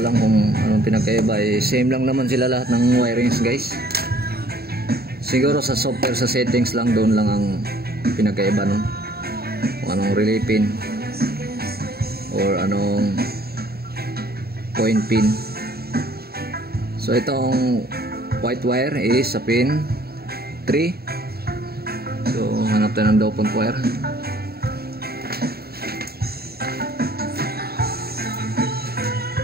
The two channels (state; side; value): late; left; 0.45 ms